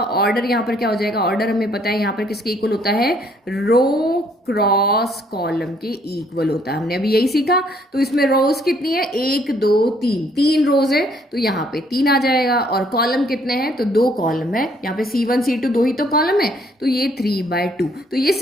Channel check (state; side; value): normal; both; correlation 0.65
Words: यहाँ पर क्या हो जाएगा, ऑर्डर हमें पता है यहाँ पर किसके इक्वल होता है, रो क्रॉस कॉलम के इक्वल होता है। हमने अभी यही सीखा। तो इसमें रोज कितनी है, 1 2 3, 3 रोज है, तो यहाँ पे 3 आ जाएगा। और कॉलम कितने हैं, तो 2 कॉलम है। यहाँ पे C1 C2 2 ही तो कॉलम है, तो ये 3/2। तो